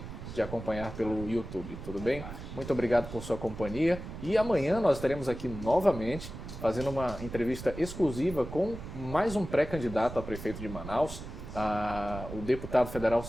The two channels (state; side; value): noise; right; rumble, 10 dB below the sound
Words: acompanhar pelo YouTube, tudo bem? Muito obrigado por sua companhia, e amanhã nós estaremos aqui novamente fazendo uma entrevista exclusiva com mais um pré-candidato a prefeito de Manaus. O deputado federal